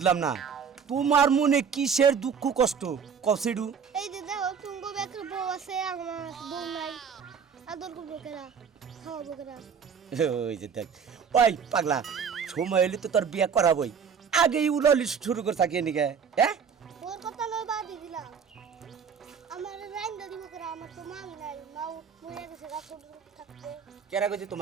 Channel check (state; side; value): quieter; left; 6.6 dB